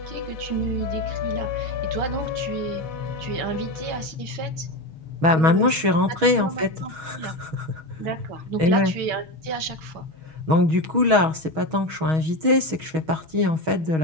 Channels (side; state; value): left; late; 6.3 ms